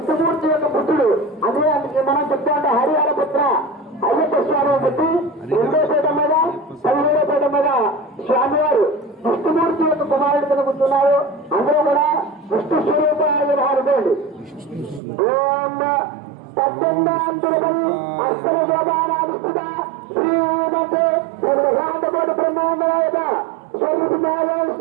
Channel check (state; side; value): drops out; left; at 15.0 s